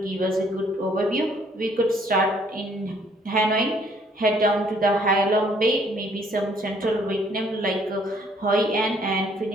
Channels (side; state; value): both; normal; correlation 0.63